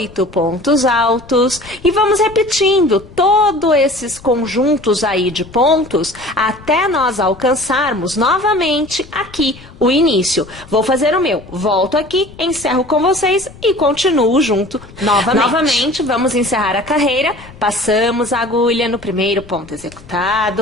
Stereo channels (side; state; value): left; noise; rumble, 20 dB below the sound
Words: pontos altos e vamos repetindo todos esses conjuntos aí de pontos até nós alcançarmos novamente aqui o início. Vou fazer o meu, volto aqui, encerro com vocês e continuo junto novamente. Novamente, vamos encerrar a carreira, passamos a agulha no primeiro ponto